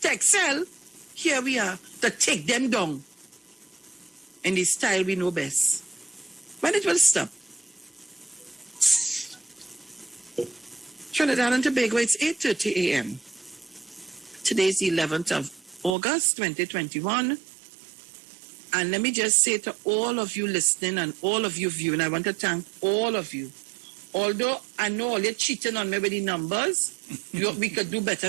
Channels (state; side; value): drops out; left; at 16.0 s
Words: to excel, here we are to take them down in the style we know best. When it will stop? Trinidad and Tobago, it's 8:30 a.m. Today's the 11th of August 2021. And let me just say to all of you listening and all of you viewing, I want to thank all of you. Although I know all you're cheating on me with the numbers, we could do better